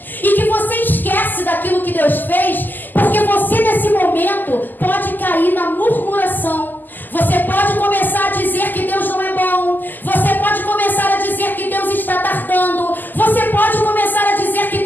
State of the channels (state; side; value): late; right; 0.087 ms